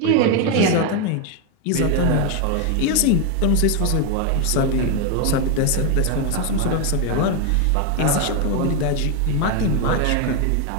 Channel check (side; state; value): both; different; correlation 0.01